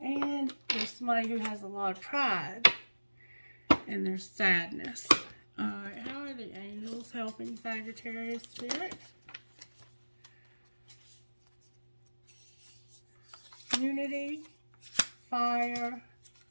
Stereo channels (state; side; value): inverted; both; correlation -1.00